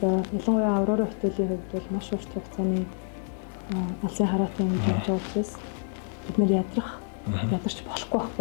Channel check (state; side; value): silent; right; 60 dB below the other